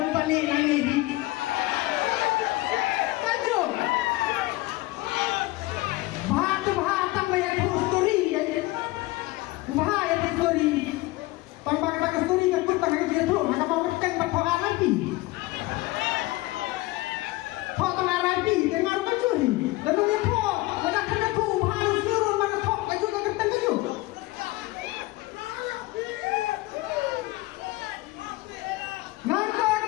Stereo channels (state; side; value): quieter; right; 20.0 dB